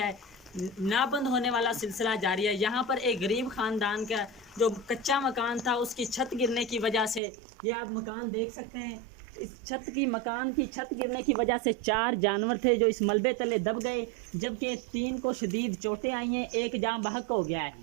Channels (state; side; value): drops out; left; at 7.2 s